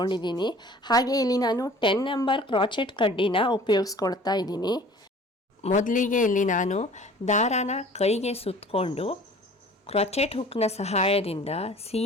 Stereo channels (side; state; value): both; normal; correlation 0.48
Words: ಹಾಗೆ ಇಲ್ಲಿ ನಾನು 10 ನಂಬರ್ ಕ್ರೋಚೆಟ್ ಕಡ್ಡಿನ ಉಪಯೋಗಿಸ್ಕೊಳ್ತಾ ಇದ್ದೀನಿ. ಮೊದಲಿಗೆ ಇಲ್ಲಿ ನಾನು ದಾರಾನ ಕೈಗೆ ಸುತ್ತಕೊಂಡು ಕ್ರೋಚೆಟ್ ಹುಕ್ನ ಸಹಾಯದಿಂದ